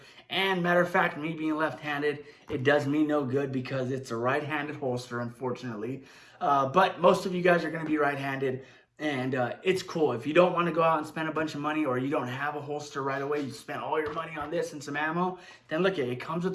And matter of fact, me being left-handed, it does me no good because it's a right-handed holster, unfortunately. But most of you guys are going to be right-handed, and it's cool. If you don't want to go out and spend a bunch of money, or you don't have a holster right away, you spent all your money on this and some ammo, then look, it comes with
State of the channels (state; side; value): identical; both; correlation 1.00